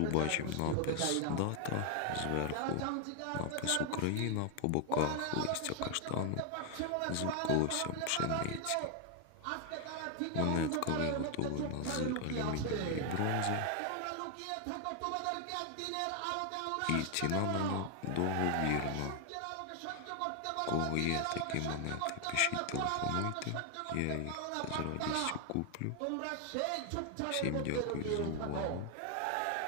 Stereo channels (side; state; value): both; different; correlation 0.00